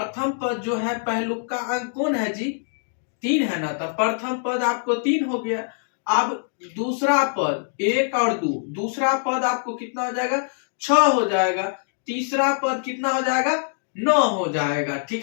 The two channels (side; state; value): right; silent; digital silence